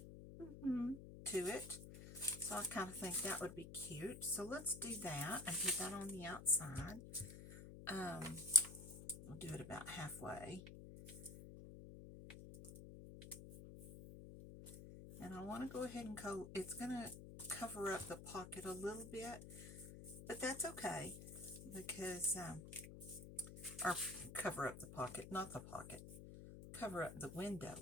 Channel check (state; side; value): noise; left; hum, 12 dB below the sound